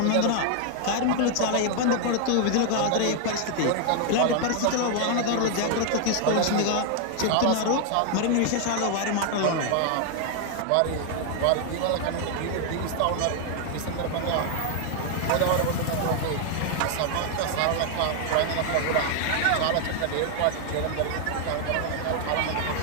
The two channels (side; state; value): both; different; correlation 0.00